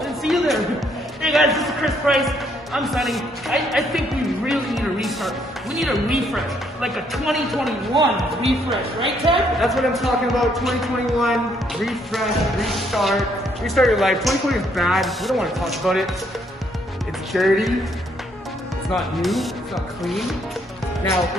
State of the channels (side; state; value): both; normal; correlation 0.70